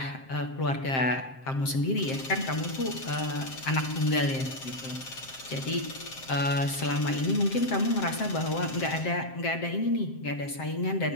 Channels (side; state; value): right; late; 7.6 ms